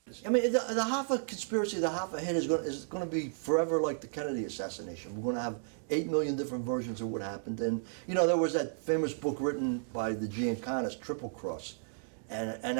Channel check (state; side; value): silent; left; digital silence